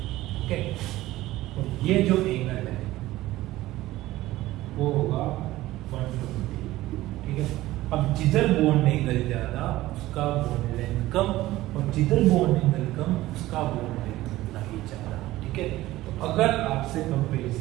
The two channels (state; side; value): quieter; left; 16.6 dB